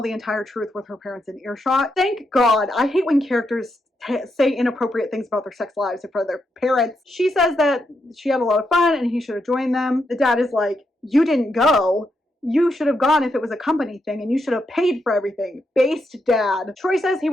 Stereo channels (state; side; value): normal; both; correlation 0.82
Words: the entire truth with her parents in earshot. Thank God. I hate when characters say inappropriate things about their sex lives in front of their parents. She says that she had a lot of fun and he should have joined them. The dad is like, you didn't go. You should have gone if it was a company thing, and you should have paid for everything. Based dad. Troy says he